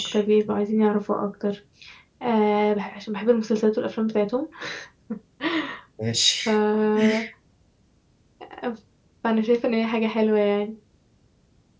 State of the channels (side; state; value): both; identical; correlation 1.00